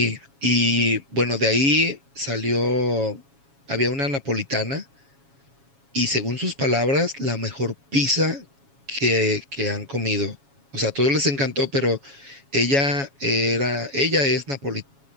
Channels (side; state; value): left; late; 7.2 ms